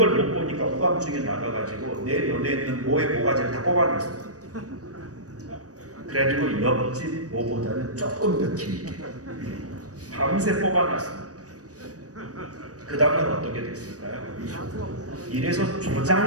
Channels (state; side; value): late; left; 0.67 ms